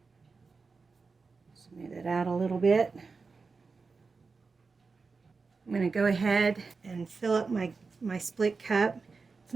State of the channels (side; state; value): left; quieter; 4.5 dB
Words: Smooth it out a little bit. I'm going to go ahead and fill up my split cup. It's